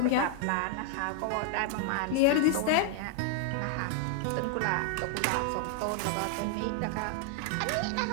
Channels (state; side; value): different; both; correlation 0.00